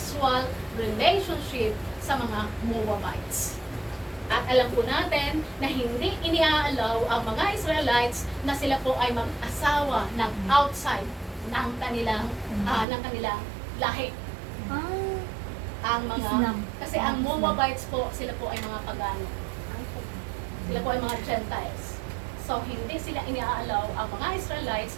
relationship sa mga Moabites. At alam po natin na hindi iniaalaw ang mga Israelites na sila po ay mag-asawa ng outside ng kanilang lahi. Ang mga Islam. kasi ang Moabites po, sila po ay mga pagano. Sila po ay mga Gentiles. So hindi sila iniaalaw ang mga Israelites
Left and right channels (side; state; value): left; drops out; at 12.9 s